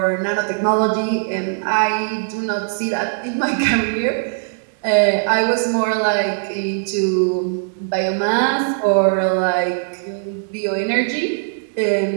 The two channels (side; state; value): left; silent; digital silence